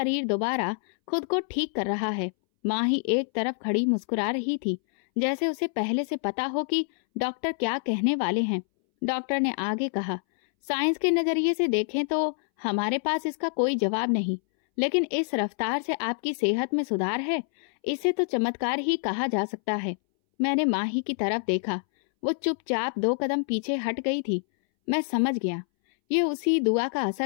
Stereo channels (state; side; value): silent; right; 60 dB below the other